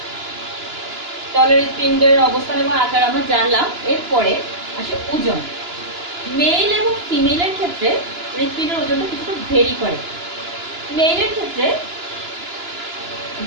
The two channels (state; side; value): late; left; 2.9 ms